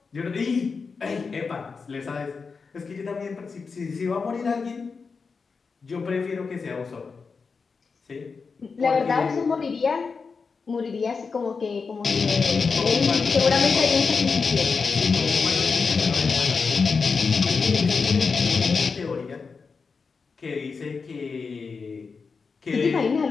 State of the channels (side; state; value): right; quieter; 5.0 dB